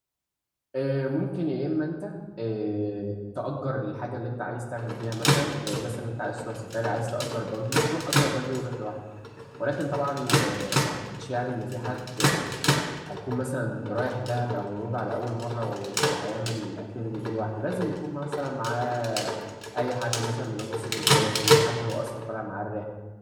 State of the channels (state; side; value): identical; both; correlation 1.00